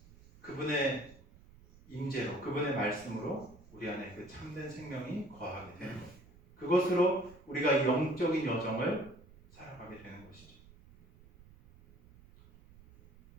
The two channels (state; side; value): noise; right; rumble, 23 dB below the sound